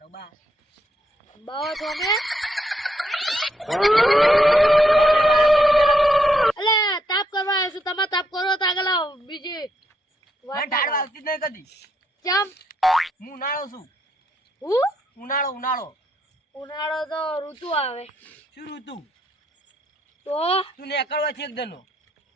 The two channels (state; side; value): normal; both; correlation 0.77